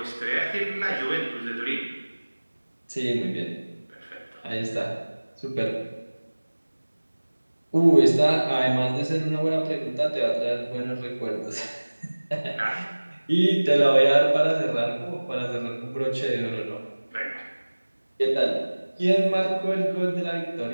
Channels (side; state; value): both; inverted; correlation -1.00